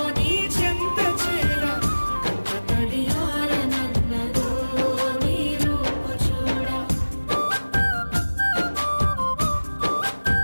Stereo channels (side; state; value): both; inverted; correlation -1.00